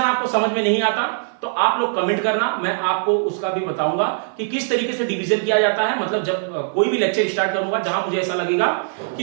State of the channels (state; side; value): silent; left; 56 dB below the other